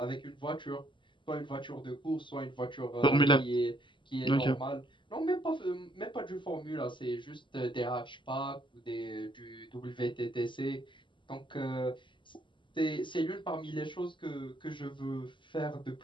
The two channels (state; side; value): late; right; 0.24 ms